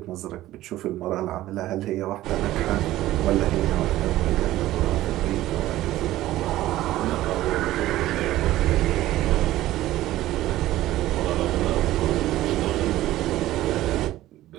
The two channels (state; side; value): quieter; left; 15.3 dB